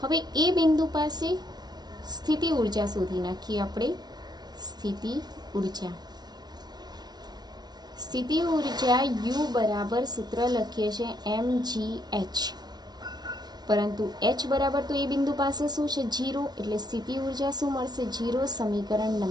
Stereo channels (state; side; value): late; left; 0.20 ms